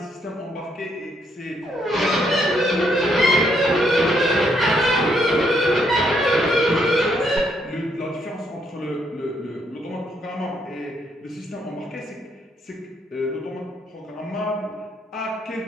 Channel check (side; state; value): both; normal; correlation 0.73